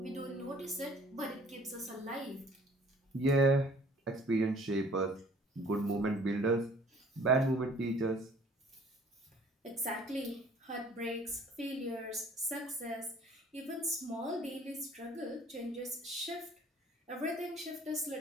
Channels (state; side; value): normal; both; correlation 0.55